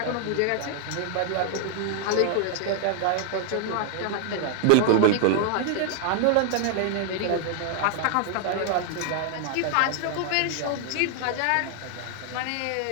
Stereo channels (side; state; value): both; different; correlation 0.00